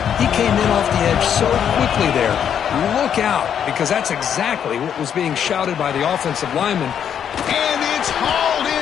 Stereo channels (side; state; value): right; quieter; 8.7 dB